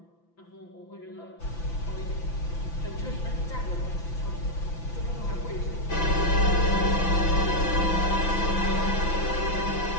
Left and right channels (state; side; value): late; right; 5.9 ms